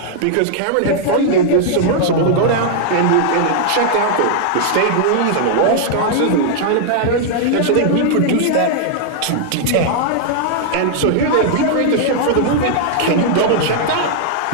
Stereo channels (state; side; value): different; both; correlation -0.01